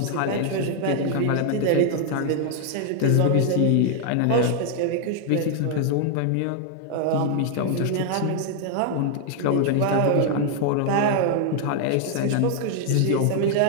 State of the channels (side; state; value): both; different; correlation 0.00